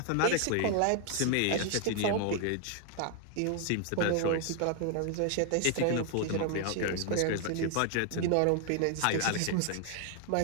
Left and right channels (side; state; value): both; different; correlation 0.00